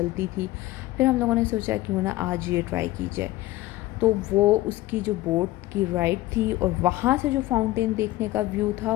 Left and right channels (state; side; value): quieter; right; 17.2 dB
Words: थी। फिर हम लोगों ने सोचा क्यों ना आज ये ट्राई की जाए। तो वो उसकी जो बोट की राइड थी, और वहाँ से जो फाउंटेन देखने का व्यू था,